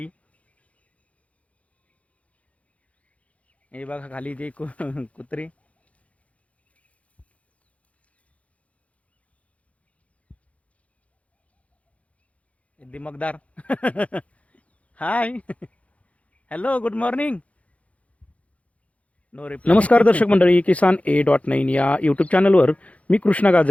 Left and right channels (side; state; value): right; late; 0.065 ms